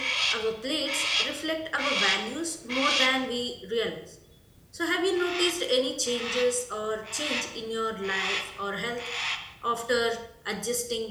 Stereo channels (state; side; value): identical; both; correlation 1.00